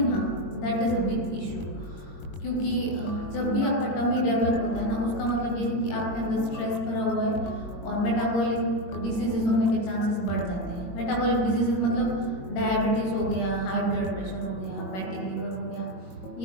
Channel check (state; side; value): late; right; 21 ms